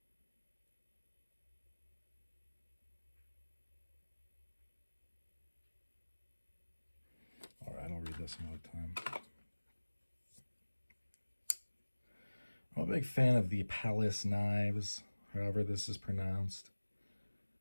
All right, I'll read this another time. I'm a big fan of the Palace knives, however this is pronounced.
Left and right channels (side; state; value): both; inverted; correlation -1.00